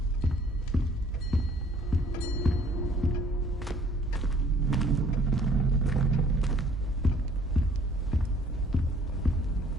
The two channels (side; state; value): both; normal; correlation 0.57